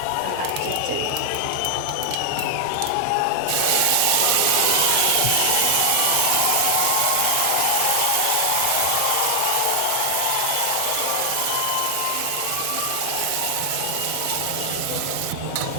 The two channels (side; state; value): both; different; correlation 0.00